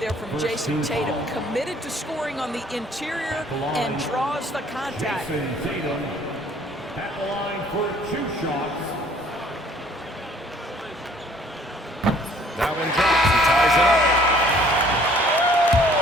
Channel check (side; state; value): both; normal; correlation 0.58